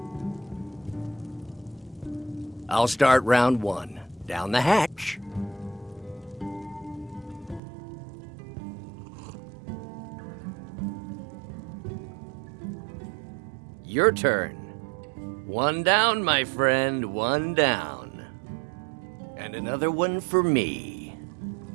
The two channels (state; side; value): drops out; left; at 7.6 s